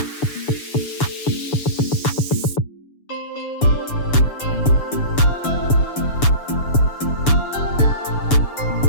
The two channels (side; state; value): right; late; 6.9 ms